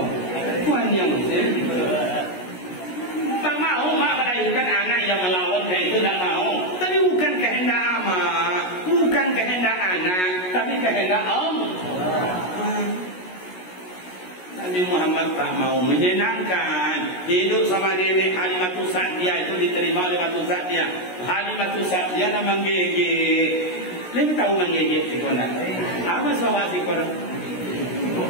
tuan yang tak mau mak melahirkan anak yang melawan itu tak mau. Tapi bukan kehendak amak, bukan kehendak anak, tapi kehendak Allah. Nabi Muhammad tak mau menyenangkan hidup sama nenek Halimatus Sa'diyah itu diterima oleh Halimatus Sa'diyah. Halimatus Sa'diyah nak menggigit. Lebih tahu menggigit si konak. Apa sahaja si konak?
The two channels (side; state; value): right; late; 16 ms